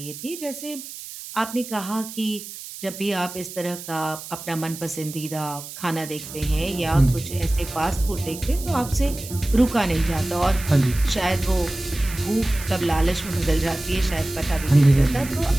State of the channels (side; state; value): right; noise; hiss, 12 dB below the sound